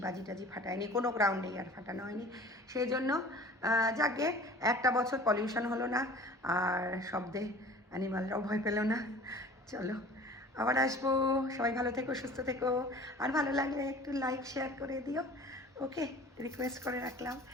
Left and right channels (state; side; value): normal; both; correlation 0.44